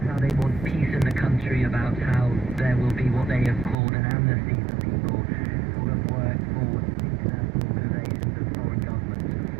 how they want peace in the country, about how there will be what they have called an amnesty for people who have worked for international organizations and foreign governments,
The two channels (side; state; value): left; drops out; at 3.8 s